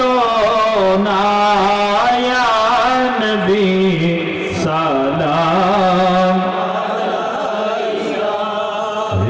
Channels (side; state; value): both; identical; correlation 1.00